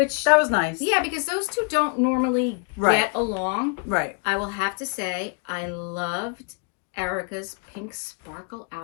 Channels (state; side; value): quieter; right; 36.5 dB